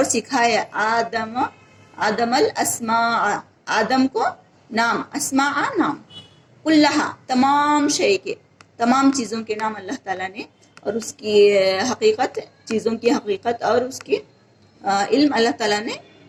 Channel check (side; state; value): both; identical; correlation 1.00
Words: سکھایا آدم الاسماء آدم کو نام، اسماء نام، کلہا تمام شے کے، تمام چیزوں کے نام اللہ تعالیٰ نے، اور اس کی حقیقت، چیزوں کی حقیقت اور اس کی علم اللہ تعالیٰ نے